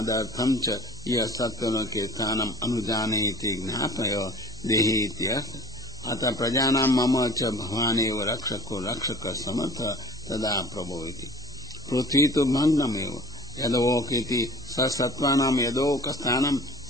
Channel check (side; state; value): both; normal; correlation 0.44